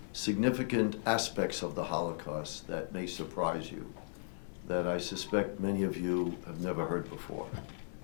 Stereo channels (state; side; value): silent; right; 54 dB below the other